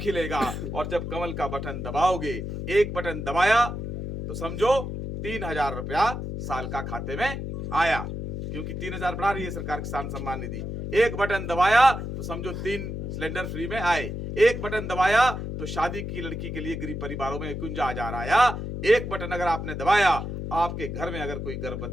खिलेगा। और जब कमल का बटन दबाओगे, एक बटन दबाया तो समझो 3000 रुपया साल का खाते में आया, क्योंकि 3000 बढ़ा रही है सरकार किसान सम्मान निधि। एक बटन दबाया तो समझो 3 सिलेंडर फ्री में आए, एक बटन दबाया तो शादी की लड़की के लिए गरीब परिवारों में 51,000 आया। एक बटन अगर आपने दबाया, आपके घर में अगर कोई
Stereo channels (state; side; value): noise; left; hum, 5 dB below the sound